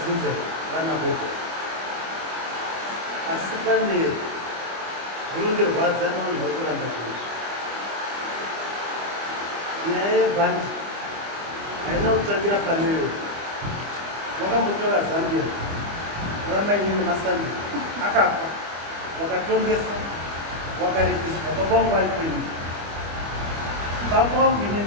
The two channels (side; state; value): left; late; 25 ms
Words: vana voko asi pane zvinondirwadza nevanhu vari kuramba zvinizvi. Nyaya yebhandi haina kutangira paneyo. Vakambotora Zambia ramainini Masandi akafa, wakatongeswa, wakaripiswa. Baba vangu vari kwenyu, baba vangu